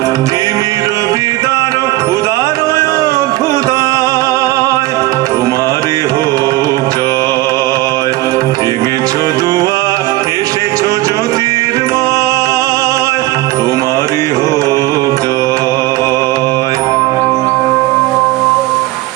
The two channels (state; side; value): quieter; left; 18.8 dB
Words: তিমির বিদার উদারয় অভ্যুদয়, তোমারই হোক জয়। ভেঙেছ